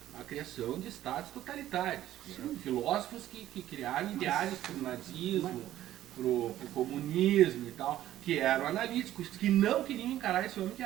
a criação de estados totalitários. Né? Filósofos que criaram ideais para o nazismo, para o comunismo e tal, que eram analíticos, que não queriam encarar esse homem que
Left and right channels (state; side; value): quieter; left; 13.2 dB